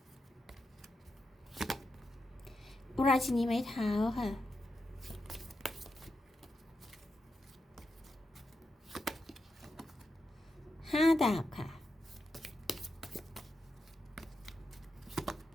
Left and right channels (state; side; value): normal; both; correlation 0.87